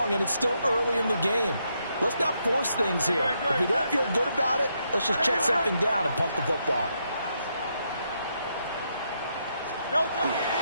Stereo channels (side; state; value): both; inverted; correlation -0.79